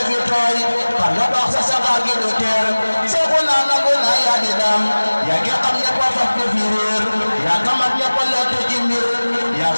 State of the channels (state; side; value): inverted; both; correlation -1.00